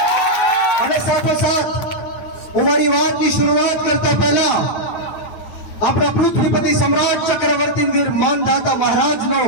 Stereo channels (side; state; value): right; late; 9.3 ms